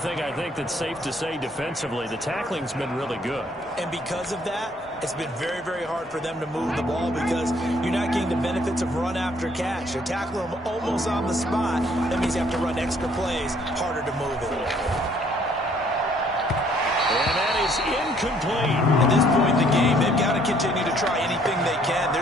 I think that's safe to say defensively, the tackling's been really good. And because of that, it's been very, very hard for them to move the ball because you're not getting the benefits of run after catch. You're tackling them almost on the spot. That means you have to run extra plays, harder to move it. And that is incomplete. At this point in the game, they've got to continue to try anything they can. They're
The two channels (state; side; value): normal; both; correlation 0.63